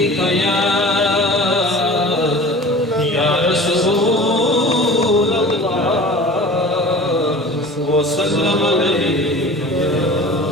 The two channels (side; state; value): both; normal; correlation 0.40